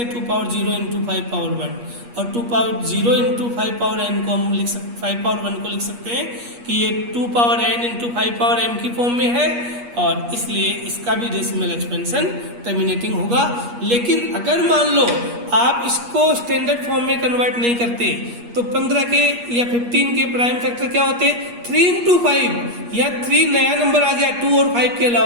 2 पावर 0 इंटू 5 पावर 1, और 2 पावर 0 इंटू 5 पावर n को हम लिख सकते 5 पावर 1 को लिख सकते हैं कि ये 2 power n into 5 power m की फॉर्म में है, और इसलिए इसका भी डेसिमल एक्सपेंशन टर्मिनेटिंग होगा। लेकिन अगर मान लो आप इसको स्टैंडर्ड फॉर्म में कन्वर्ट नहीं करते, तो 15 के या 15 के प्राइम फैक्टर क्या होते, 3 इंटू 5, या 3 नया नंबर आ गया 2 और 5 के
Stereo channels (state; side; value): late; left; 8.4 ms